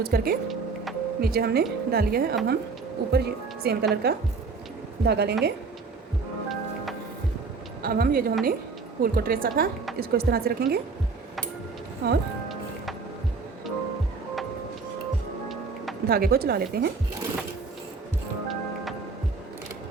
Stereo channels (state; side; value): quieter; left; 4.5 dB